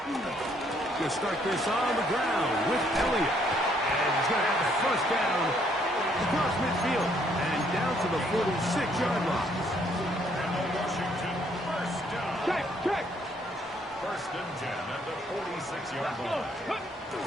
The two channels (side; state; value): both; normal; correlation 0.68